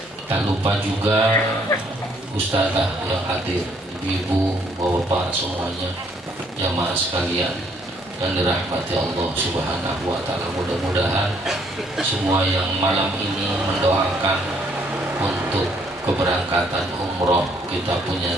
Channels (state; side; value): normal; both; correlation 0.67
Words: Tak lupa juga Ustazah yang hadir, ibu-ibu, bapak-bapak semuanya, jamaah sekalian yang dirahmati Allah Subhanahu wa taala. Mudah-mudahan semua yang malam ini mendoakan untuk keberangkatan umroh kita punya